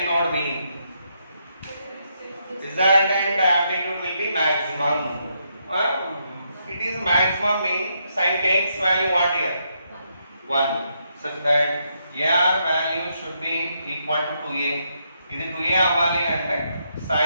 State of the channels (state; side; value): inverted; both; correlation -0.78